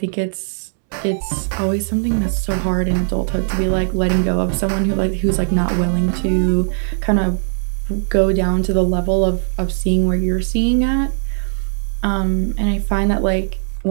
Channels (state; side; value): silent; left; 67 dB below the other